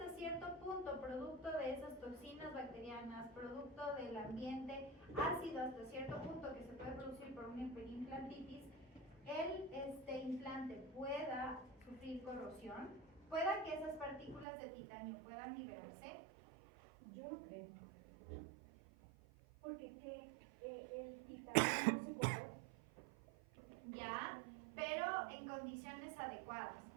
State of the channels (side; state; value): left; drops out; at 14.5 s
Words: cierto punto, producto de esas toxinas bacterianas, producto del ambiente ácido hasta cierto punto que se puede producir por una hiperimplantitis, el implante pueda sufrir corrosión? ¿Pueda que esas partículas de titanio puedan liberarse? Yo no creo. Porque el titanio no se corrompe. Ya, pero en condiciones adecuadas.